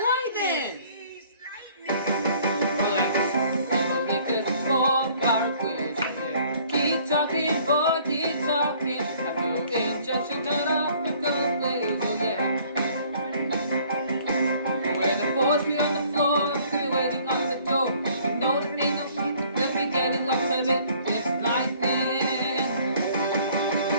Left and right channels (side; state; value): both; inverted; correlation -0.57